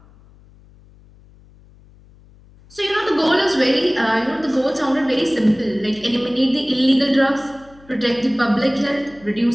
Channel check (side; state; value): left; noise; hum, 26 dB below the sound